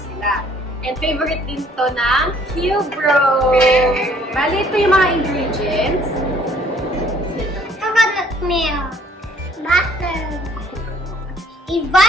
And favorite din to ng Qbros! Bali ito yung mga ingredients. Coconut milk, butter,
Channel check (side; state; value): both; normal; correlation 0.60